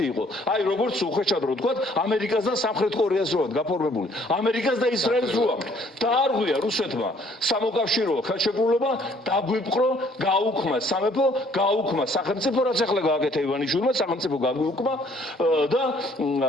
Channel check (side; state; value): both; normal; correlation 0.61